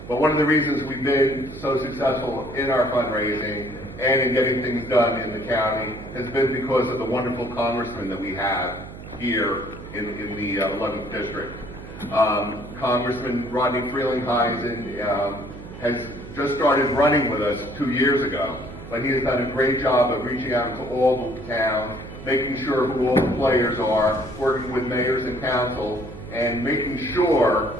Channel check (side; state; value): right; noise; hum, 14 dB below the sound